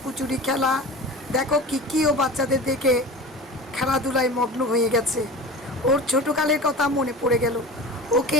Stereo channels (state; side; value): normal; both; correlation 0.34